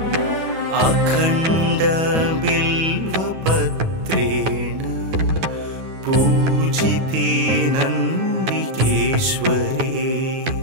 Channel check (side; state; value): left; late; 9.3 ms